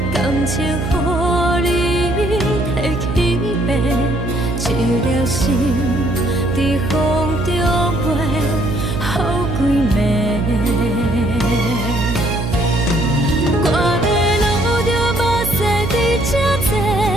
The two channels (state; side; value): noise; right; hum, 3 dB below the sound